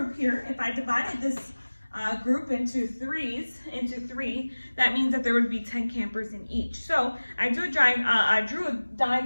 here, if I divided this group into 3, that means that there would be 10 campers in each. So I drew a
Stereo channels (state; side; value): inverted; both; correlation -1.00